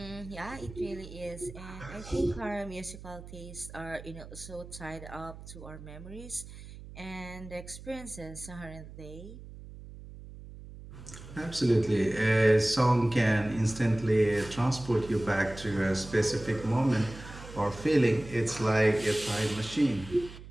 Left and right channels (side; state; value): right; noise; hum, 15 dB below the sound